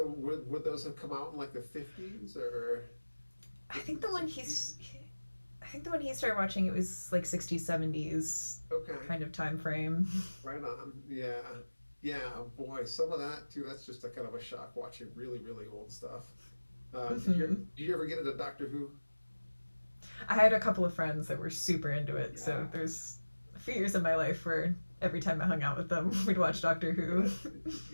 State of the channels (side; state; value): both; inverted; correlation -1.00